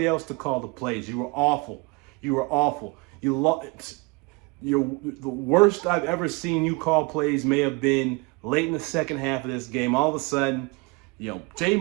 else to call the plays. You were awful. The worst I've ever seen you call plays may have been late in the second half of this game. All of a sudden,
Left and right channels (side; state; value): left; quieter; 27.4 dB